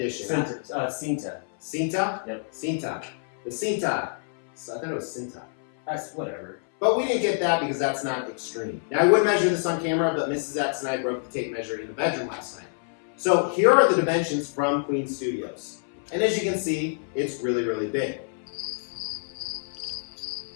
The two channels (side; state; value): right; silent; 60 dB below the other